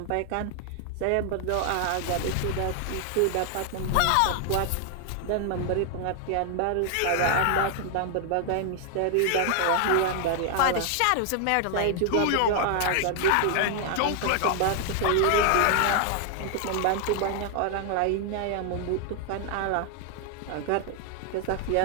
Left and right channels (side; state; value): both; different; correlation 0.00